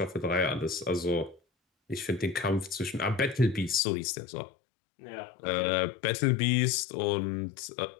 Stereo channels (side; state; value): right; drops out; at 3.8 s